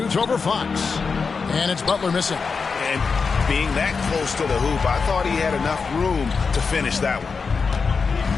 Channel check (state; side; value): quieter; right; 5.1 dB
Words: over Fox. And it's Butler missing. And being that close to the hoop, I thought he had enough room to finish that one.